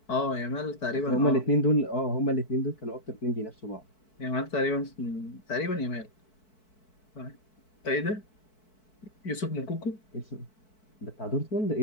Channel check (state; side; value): late; right; 4.6 ms